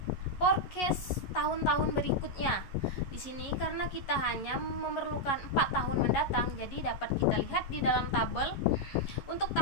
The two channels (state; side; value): late; right; 11 ms